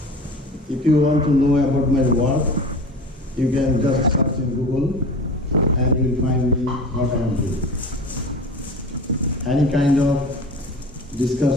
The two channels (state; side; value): normal; both; correlation 0.36